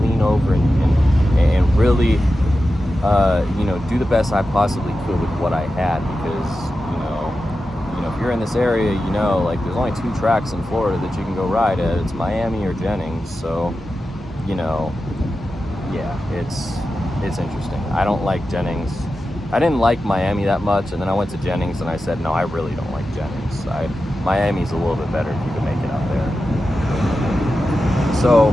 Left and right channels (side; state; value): both; normal; correlation 0.92